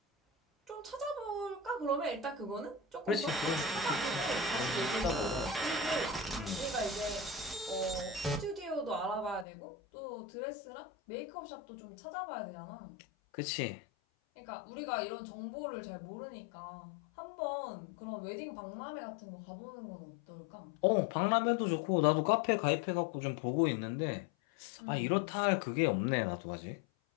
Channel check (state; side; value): drops out; right; at 9.5 s